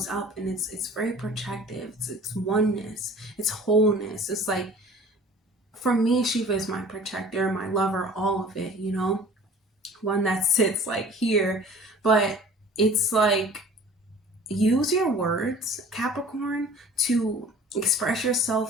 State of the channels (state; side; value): normal; both; correlation 0.47